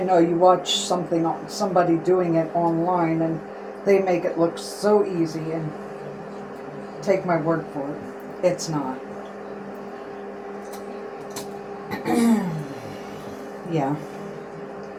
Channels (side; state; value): both; identical; correlation 1.00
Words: know you watch somebody doing it online and they make it look so easy, and take my word for it, it's not. Yeah.